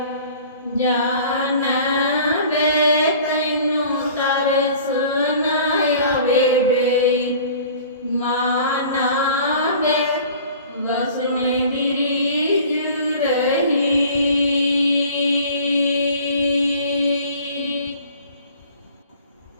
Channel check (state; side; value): inverted; both; correlation -0.47